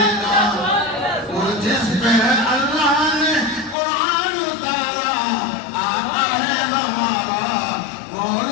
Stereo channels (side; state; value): right; drops out; at 3.8 s